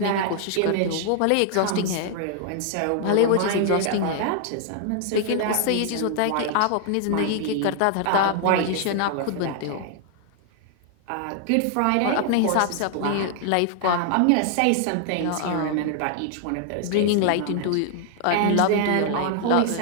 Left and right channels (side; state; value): both; different; correlation 0.00